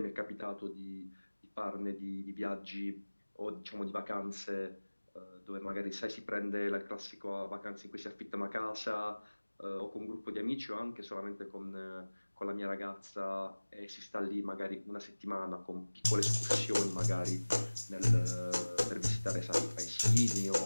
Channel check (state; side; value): inverted; both; correlation -1.00